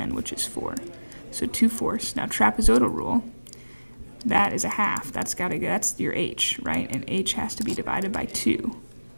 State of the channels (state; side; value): inverted; both; correlation -1.00